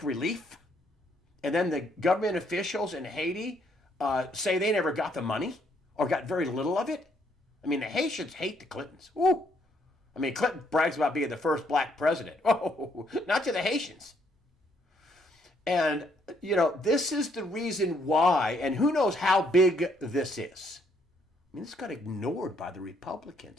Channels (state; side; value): normal; both; correlation 0.70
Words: relief. And then the government officials in Haiti say they never got the money or got very little of it. I mean, the Haitians hate the Clintons. Ooh. I mean, Clinton brags about being the first black president. Oh, not to the Haitians. And, this is the reason why, and who knows how big this is. I mean, this got ignored by the